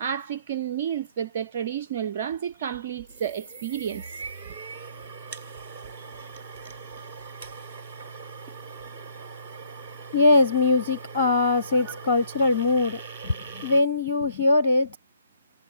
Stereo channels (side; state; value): both; inverted; correlation -0.67